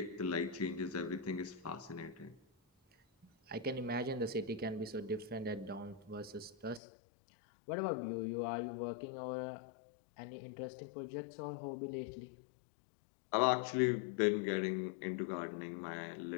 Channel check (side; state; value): right; drops out; at 6.8 s